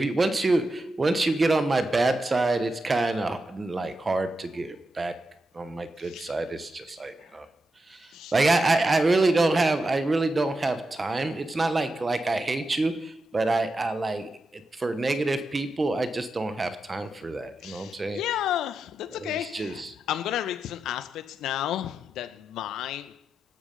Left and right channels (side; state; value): both; normal; correlation 0.88